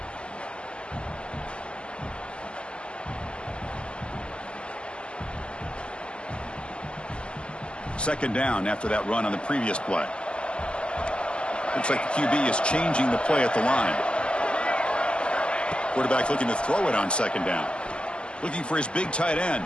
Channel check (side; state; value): right; late; 0.051 ms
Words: Second down after that run on the previous play. Looks like the QB is changing the play at the line. Quarterback looking to throw it on second down. Looking for his big tight end.